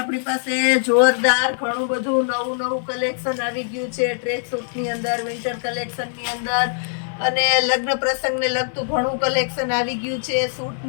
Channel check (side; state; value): right; silent; digital silence